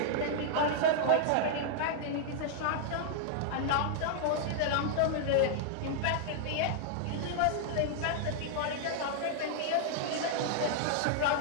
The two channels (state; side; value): different; both; correlation -0.01